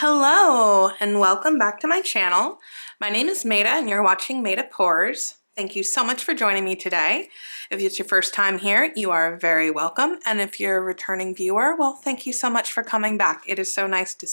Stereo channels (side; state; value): both; inverted; correlation -1.00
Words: and welcome back to my channel. My name is Maida and you're watching Maida Pours. Thank you so much for joining me today. If it's your first time here, you are very welcome. And if you're a returning viewer, well, thank you so much for coming back. It is so nice to